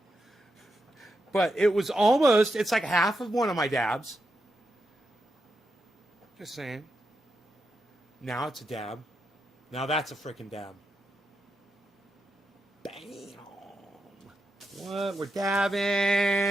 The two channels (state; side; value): normal; both; correlation 0.86